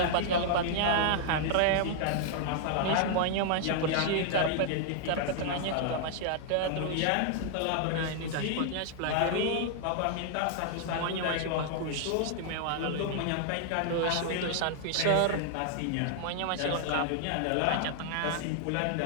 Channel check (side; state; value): both; different; correlation -0.01